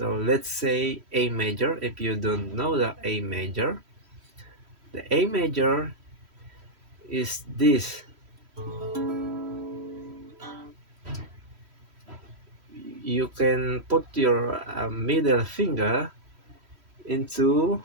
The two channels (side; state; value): left; late; 3.1 ms